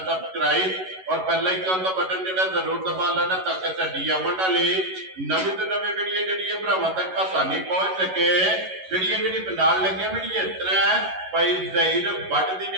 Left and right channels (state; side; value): late; left; 11 ms